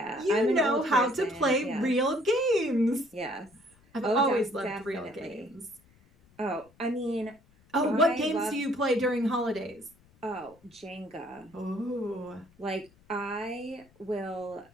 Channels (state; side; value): noise; left; rumble, 30 dB below the sound